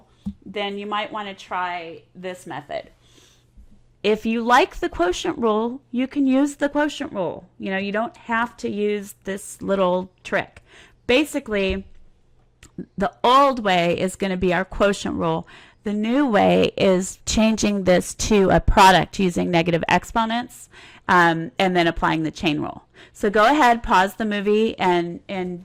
then you might want to try this method. If you like the quotient rule, you can use the quotient rule. You don't have to use this little trick. Basically, the old way is going to be our quotient rule. The new way is changing this to a product using negative exponents and then applying the chain rule. So go ahead, pause the movie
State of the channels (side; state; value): both; identical; correlation 1.00